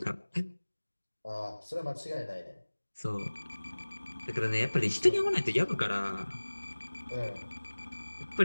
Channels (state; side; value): inverted; both; correlation -1.00